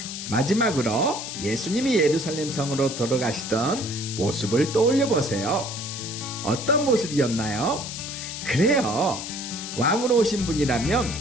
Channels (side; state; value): left; noise; hiss, 7 dB below the sound